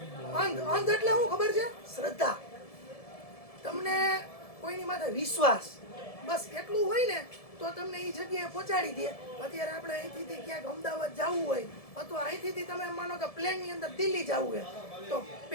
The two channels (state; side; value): late; right; 1.7 ms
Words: અંધ એટલે શું ખબર છે? શ્રદ્ધા. તમને કોઈની માથે વિશ્વાસ, બસ એટલું હોય ને તો તમને એ જગ્યાએ પહોંચાડી દે. અત્યારે આપણે અહીંથી ક્યાંક અમદાવાદ જવું હોય અથવા અહીંથી તમે માનો કે પ્લેનની અંદર દિલ્હી જવું હોય તો